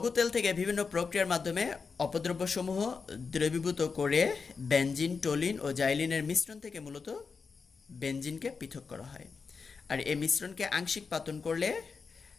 তেল থেকে বিভিন্ন প্রক্রিয়ার মাধ্যমে অপদ্রব্যসমূহ দ্রবীভূত করে বেনজিন, টলুইন ও জাইলিনের মিশ্রণ থেকে মূলত বেনজিনকে পৃথক করা হয়। আর এই মিশ্রণকে আংশিক পাতন করলে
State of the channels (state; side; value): quieter; right; 5.1 dB